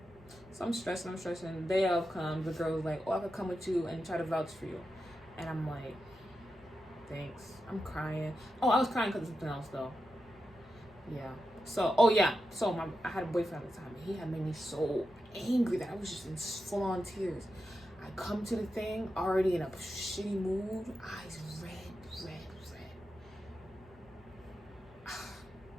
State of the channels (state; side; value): normal; both; correlation 0.89